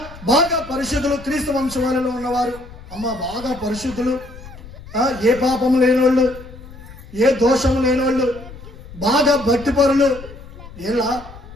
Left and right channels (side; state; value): left; noise; rumble, 17 dB below the sound